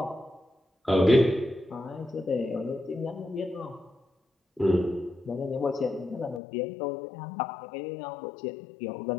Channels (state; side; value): drops out; right; at 6.4 s